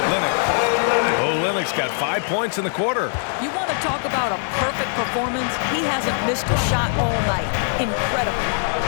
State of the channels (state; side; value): silent; right; digital silence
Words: Olynyk's got 5 points in the quarter. You want to talk about a perfect performance? He hasn't missed a shot all night. Incredible.